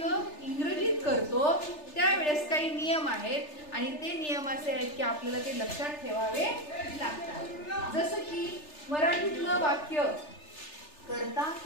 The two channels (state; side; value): late; right; 3.3 ms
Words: इंग्रजीत करतो त्यावेळेस काही नियम आहेत आणि ते नियम असे आहेत की आपल्याला ते लक्षात ठेवावे लागतात. जसं की मराठीतलं वाक्य कर्ता